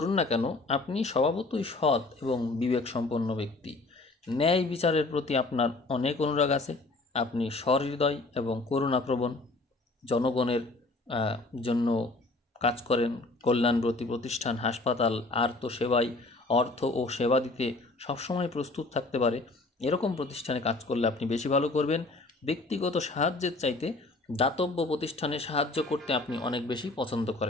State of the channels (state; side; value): quieter; right; 3.1 dB